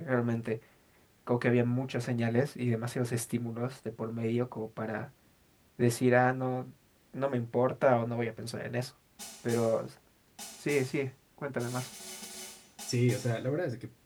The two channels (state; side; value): identical; both; correlation 1.00